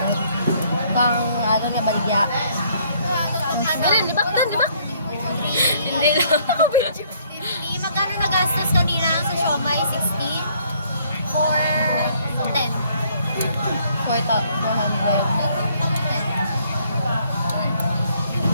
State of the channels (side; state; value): both; inverted; correlation -0.64